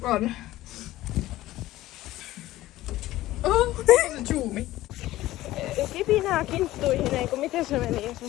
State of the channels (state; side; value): quieter; right; 16.1 dB